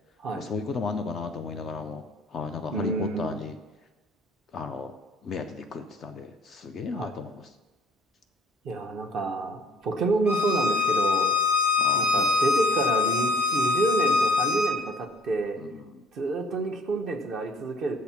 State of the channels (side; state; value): both; normal; correlation 0.56